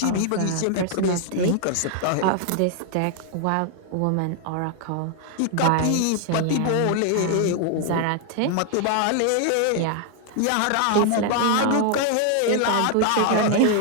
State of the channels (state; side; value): different; both; correlation 0.00